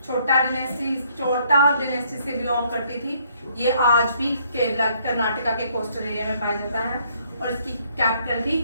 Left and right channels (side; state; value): both; inverted; correlation -0.66